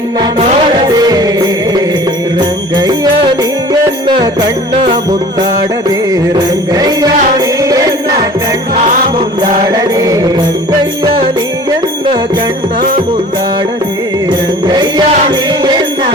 ನೋಡದೆ ರಂಗಯ್ಯ ನೀಯನ್ನ ಕಣ್ಣ ಮುಂದಾಡದೆ ರಂಗಯ್ಯ ನೀಯನ್ನ ಕಣ್ಣ ಮುಂದಾಡದೆ ರಂಗಯ್ಯ ನೀಯನ್ನ ಕಣ್ಣ ಮುಂದಾಡದೆ ರಂಗಯ್ಯ ನೀಯನ್ನ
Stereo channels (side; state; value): both; normal; correlation 0.45